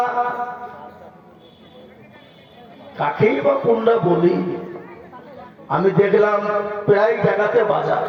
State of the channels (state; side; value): identical; both; correlation 1.00